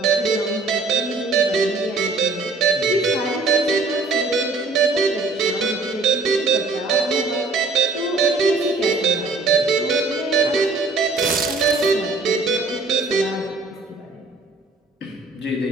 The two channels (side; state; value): left; quieter; 3.7 dB